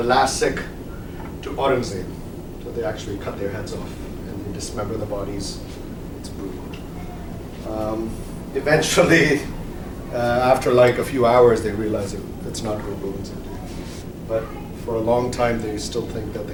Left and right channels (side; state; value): both; identical; correlation 1.00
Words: last Sikh, to Aurangzeb. So they actually cut their heads off and they dismember the bodies. It's brutal. Eventually, after like a few hours, they realize it's not Guru Gobind Singh Ji. But for a long time, they still think that